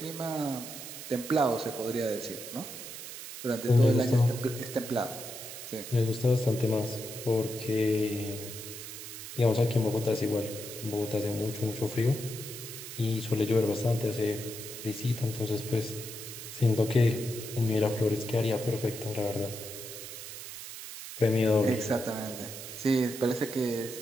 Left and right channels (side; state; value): right; noise; hiss, 10 dB below the sound